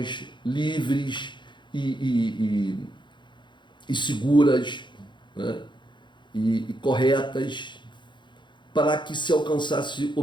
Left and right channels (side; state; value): right; late; 0.23 ms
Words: livres e seguras, né, e corretas, para que se alcançasse